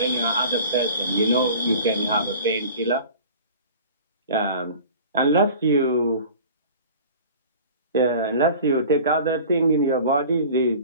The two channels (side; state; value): both; inverted; correlation -0.42